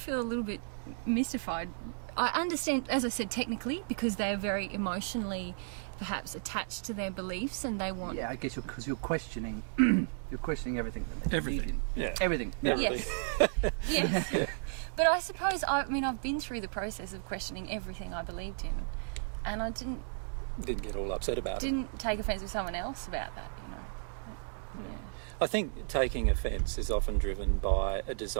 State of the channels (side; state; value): left; silent; digital silence